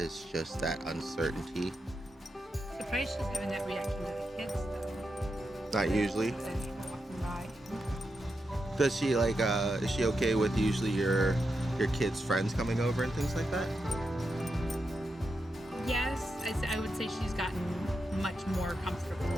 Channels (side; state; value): both; normal; correlation 0.86